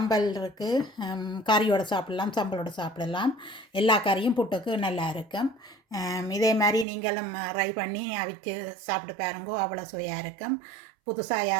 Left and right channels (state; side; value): drops out; left; at 6.9 s